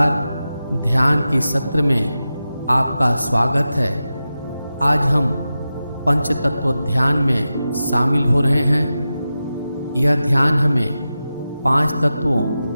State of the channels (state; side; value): inverted; both; correlation -0.92